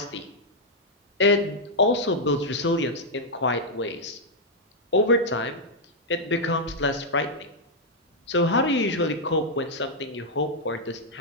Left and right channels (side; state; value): both; normal; correlation -0.04